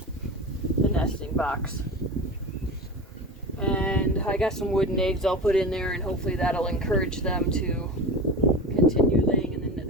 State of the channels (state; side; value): normal; both; correlation 0.29